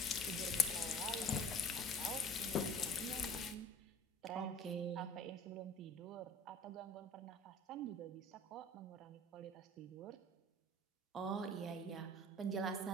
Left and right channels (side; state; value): both; normal; correlation 0.46